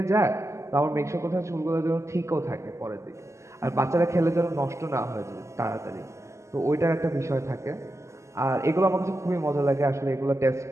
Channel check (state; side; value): late; left; 0.14 ms